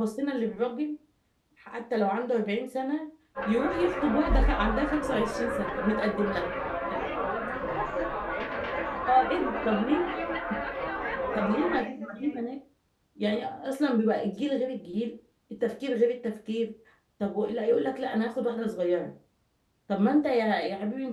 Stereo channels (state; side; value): identical; both; correlation 1.00